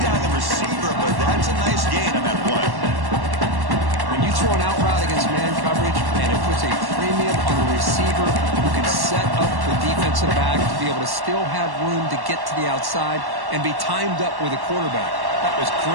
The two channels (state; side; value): late; left; 1.1 ms